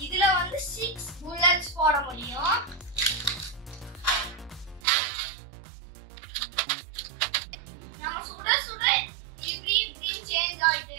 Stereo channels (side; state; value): left; drops out; at 4.8 s